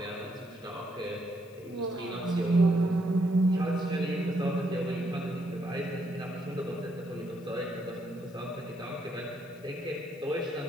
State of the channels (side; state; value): left; noise; hiss, 27 dB below the sound